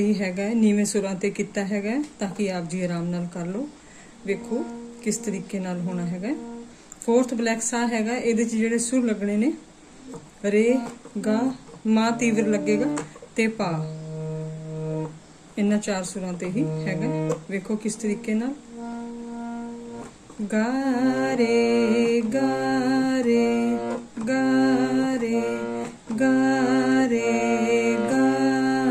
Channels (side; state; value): both; identical; correlation 1.00